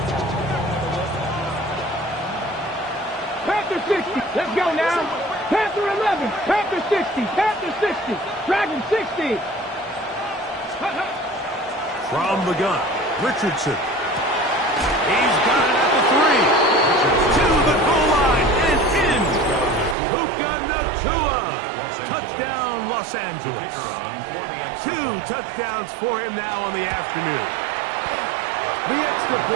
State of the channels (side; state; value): left; drops out; at 20.0 s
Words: Panther 60. Let's go now. Panther 11. Panther 60. Panther 60. Dragon 60. From the gun, Richardson. He's got it at the 3. To the goal line and in. Puka Nakua. Touchdown, Los Angeles. 2 touchdowns for him now on the afternoon. The extra